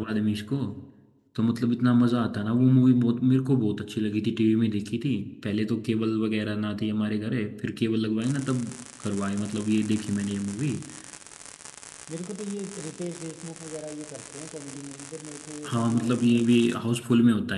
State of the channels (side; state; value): both; identical; correlation 1.00